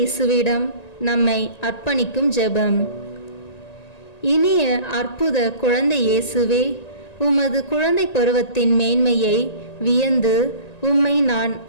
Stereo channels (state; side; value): late; right; 1.9 ms